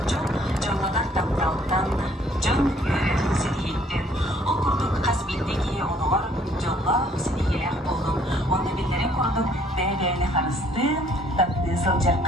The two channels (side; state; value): both; normal; correlation 0.62